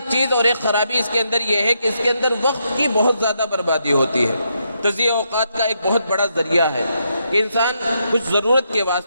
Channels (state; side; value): inverted; both; correlation -0.80